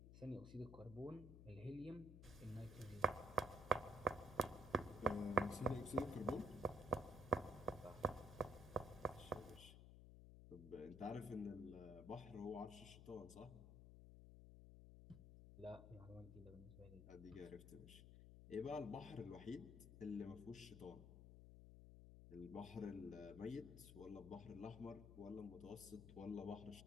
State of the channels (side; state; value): left; noise; hum, 13 dB below the sound